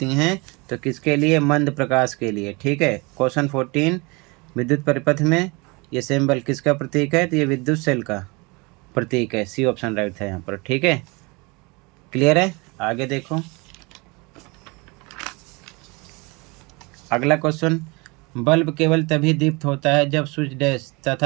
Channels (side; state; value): left; quieter; 27.1 dB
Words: हैं। तो किसके लिए? मंद प्रकाश के लिए। ठीक है, क्वेश्चन 14, विद्युत परिपथ में ये सिंबल किसका प्रतीक है? तो ये विद्युत सेल का प्रतीक है। C ऑप्शन राइट था यहाँ पर। ठीक है, क्लियर है? आगे देखो, अगला क्वेश्चन, बल्ब केवल तभी दीप्त होता है जब स्विच डैश